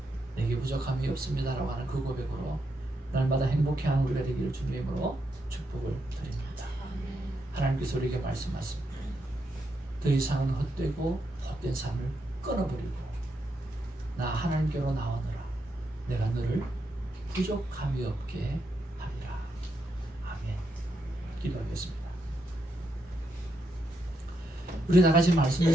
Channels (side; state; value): both; normal; correlation 0.81